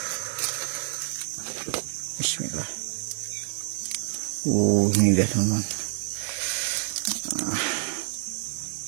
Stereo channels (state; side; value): silent; left; 60 dB below the other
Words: Bismillah. Ini dia teman-teman.